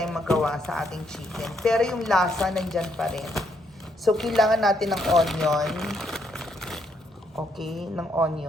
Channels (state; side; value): normal; both; correlation 0.74